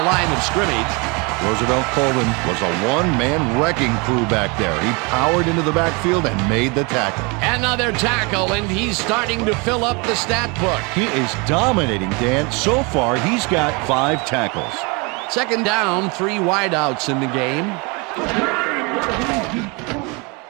line of scrimmage. Roosevelt Colvin was a one-man wrecking crew back there. He powered into the backfield and made the tackle. Another tackle, and he's starting to fill up the stat book. He is dominating, Dan. So far, he's got 5 tackles. Second down, 3 wideouts in the game.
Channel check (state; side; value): quieter; left; 29.5 dB